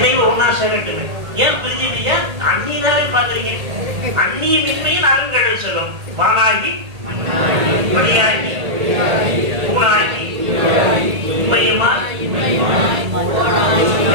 ஒன்னா சேரட்டுங்க. ஏன் பிரிஞ்சுட்டீங்க? அந்நியனாவே பாக்குறீங்க. அந்நியமின்மையில் அருங்கடல் சொல்லும். வானாகி மணியாகி பூனாகி உண்மையுமா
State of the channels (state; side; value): late; left; 1.8 ms